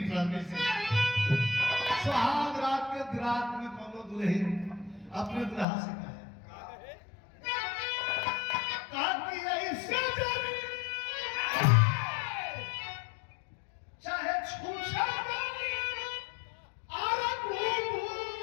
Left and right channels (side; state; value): right; drops out; at 5.7 s